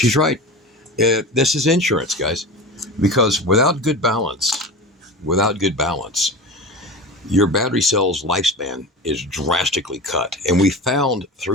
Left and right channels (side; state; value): both; normal; correlation 0.30